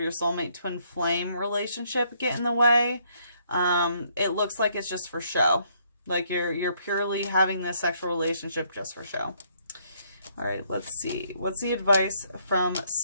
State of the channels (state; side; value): inverted; both; correlation -0.69